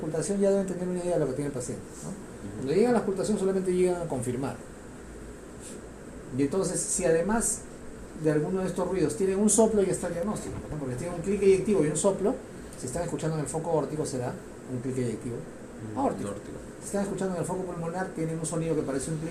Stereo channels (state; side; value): identical; both; correlation 1.00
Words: ya deben tener una idea de lo que tiene el paciente, ¿no? Cuando llegan a la ocultación solamente llegan a confirmar. Y entonces, si además de alguno de estos ruidos tienen un soplo, ya está el diagnóstico, ¿no? Porque tienen un clic eyectivo y un soplo, si están escuchando en el foco órtico será un clic eyectivo aórtico. Si están escuchando en el foco pulmonar, tienen un sonido que parece un